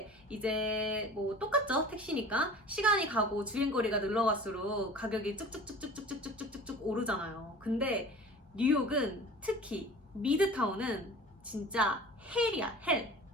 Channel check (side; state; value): both; normal; correlation 0.41